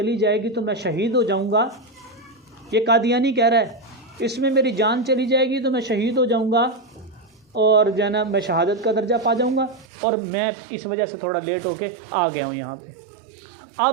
جائے گی تو میں شہید ہو جاؤں گا. یہ قادیانی کہہ رہا ہے اس میں میری جان چلی جائے گی تو میں شہید ہو جاؤں گا اور جو ہے نا میں شہادت کا درجہ پا جاؤں گا، اور میں اس وجہ سے تھوڑا لیٹ ہو کے آ گیا ہوں یہاں پہ.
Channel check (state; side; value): drops out; left; at 9.9 s